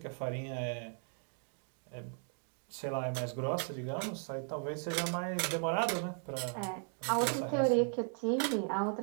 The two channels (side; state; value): left; silent; 53 dB below the other